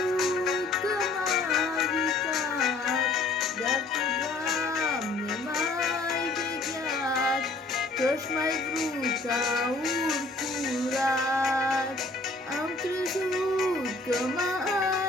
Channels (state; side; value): quieter; right; 3.3 dB